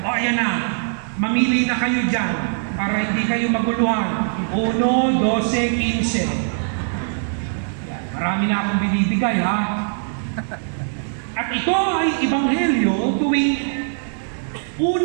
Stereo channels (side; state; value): left; silent; digital silence